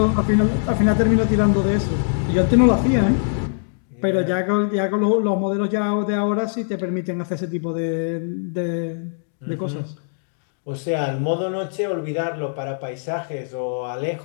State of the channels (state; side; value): silent; right; digital silence